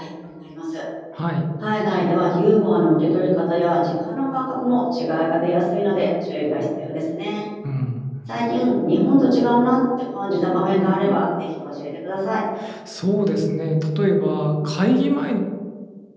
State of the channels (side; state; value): both; identical; correlation 1.00